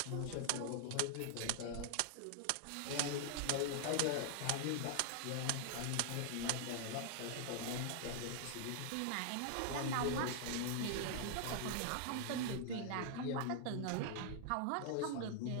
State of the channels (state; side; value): different; both; correlation 0.00